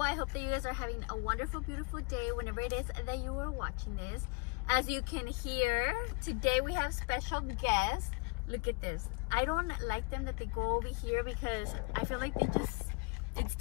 hope that you guys are having a wonderful, beautiful day whenever it is that you are watching this. As you can hear, today we have special guests. Look at this. I don't like them that they go over here because I feel like it's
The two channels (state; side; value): quieter; right; 28.4 dB